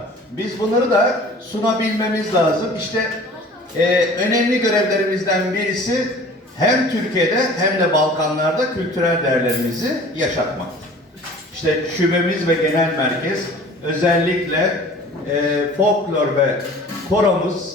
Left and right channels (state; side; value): normal; both; correlation 0.46